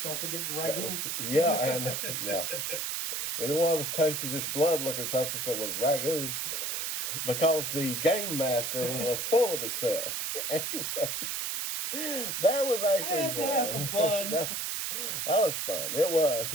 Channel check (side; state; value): right; noise; hiss, 2 dB below the sound